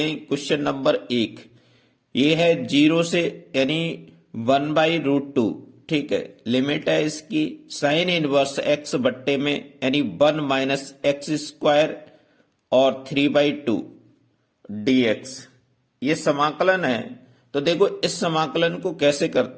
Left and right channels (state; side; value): identical; both; correlation 1.00